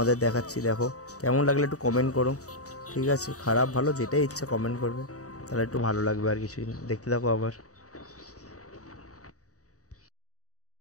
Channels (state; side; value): late; right; 0.66 ms